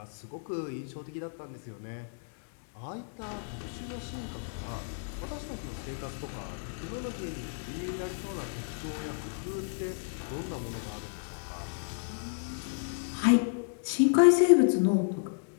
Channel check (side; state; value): right; silent; digital silence